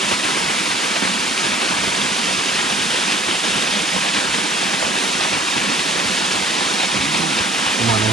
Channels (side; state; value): both; normal; correlation 0.53